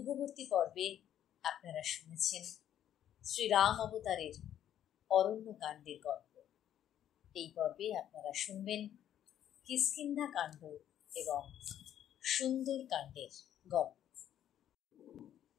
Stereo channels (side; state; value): right; quieter; 10.8 dB